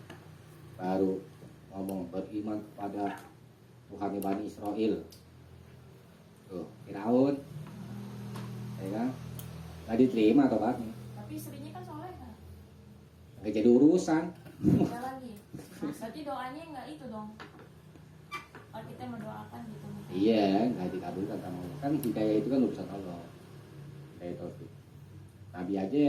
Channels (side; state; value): both; identical; correlation 1.00